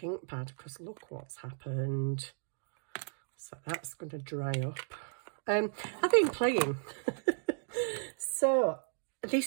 ink pad because look what's happened. So that's going to dry up. I've been playing. So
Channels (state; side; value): silent; left; digital silence